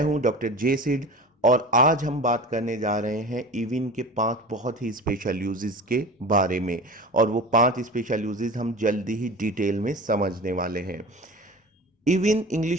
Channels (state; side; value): normal; both; correlation 0.34